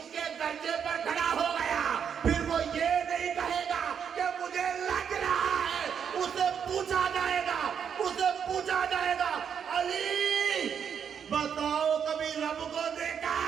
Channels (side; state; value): left; quieter; 7.6 dB